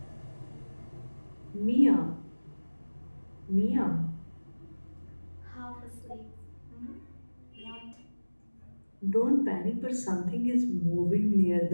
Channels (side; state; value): both; inverted; correlation -1.00